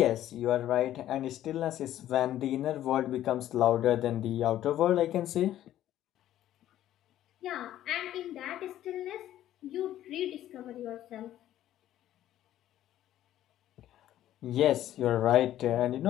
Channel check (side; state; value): right; quieter; 12.7 dB